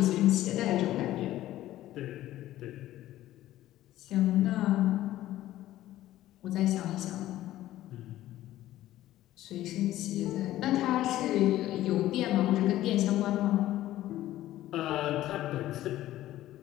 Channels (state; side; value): quieter; right; 14.4 dB